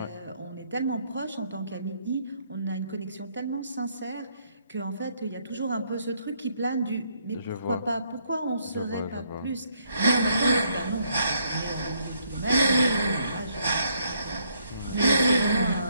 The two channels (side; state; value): both; inverted; correlation -0.71